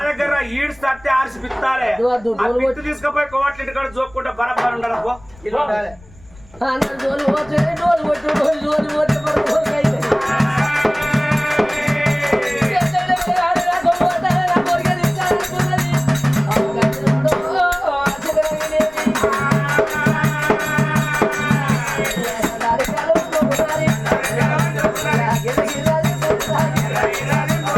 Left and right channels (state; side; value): noise; left; rumble, 24 dB below the sound